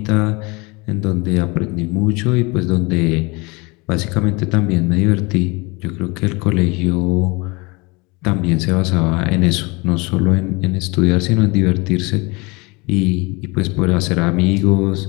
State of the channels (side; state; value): right; quieter; 26.5 dB